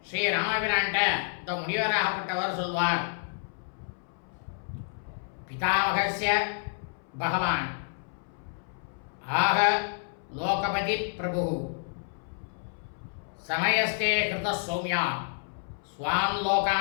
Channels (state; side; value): silent; right; 58 dB below the other